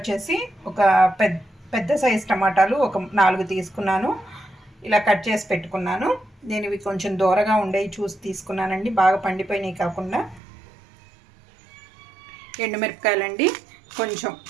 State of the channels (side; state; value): left; drops out; at 10.4 s